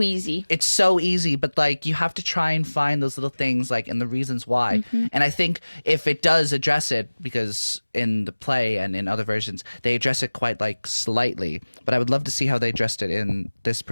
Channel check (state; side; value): inverted; both; correlation -1.00